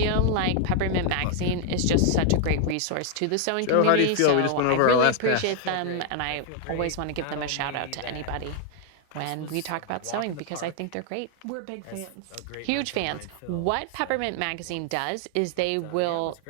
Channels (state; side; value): different; both; correlation 0.00